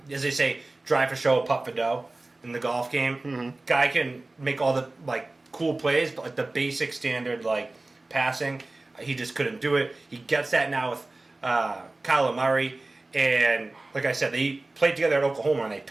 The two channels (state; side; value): quieter; left; 3.0 dB